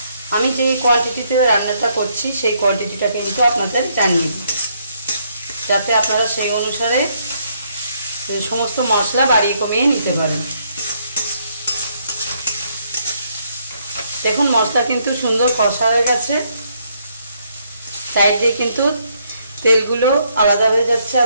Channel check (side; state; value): both; inverted; correlation -0.72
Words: আমি যে কোয়ান্টিটিতে রান্নাটা করছি সেই কোয়ান্টিটিটা কিন্তু আপনাদের জানিয়ে দিই, যাতে আপনারা সেই অনুসারে সমস্ত মশলা বাড়িয়ে কমিয়ে নিতে পারেন। দেখুন মশলা কিন্তু সুন্দর কষা হয়ে গেছে, সাইড দিয়ে কিন্তু তেলগুলো আলাদা হয়ে যাচ্ছে